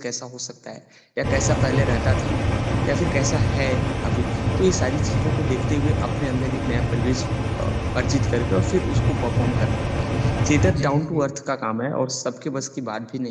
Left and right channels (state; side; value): identical; both; correlation 1.00